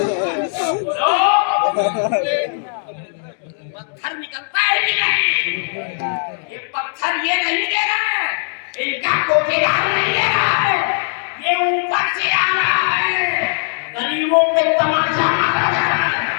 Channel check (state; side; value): silent; right; digital silence